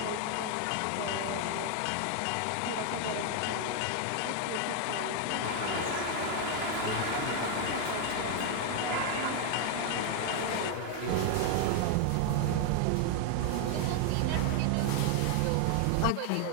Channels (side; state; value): both; different; correlation 0.00